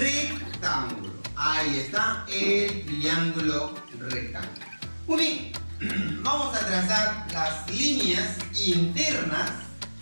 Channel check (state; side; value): inverted; both; correlation -1.00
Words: Ahí está el triángulo rectángulo. Muy bien. Vamos a trazar las líneas internas.